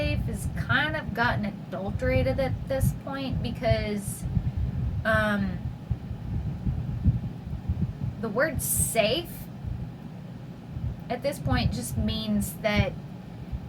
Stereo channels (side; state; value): both; identical; correlation 1.00